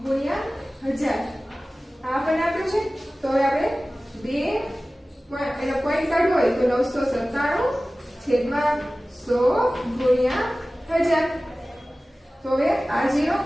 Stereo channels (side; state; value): both; normal; correlation 0.97